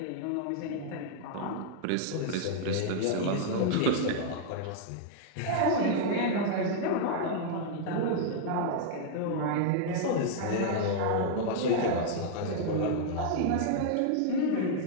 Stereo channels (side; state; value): both; different; correlation -0.01